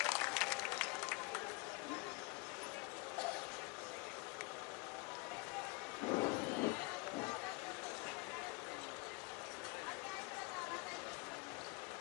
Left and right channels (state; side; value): quieter; right; 27.0 dB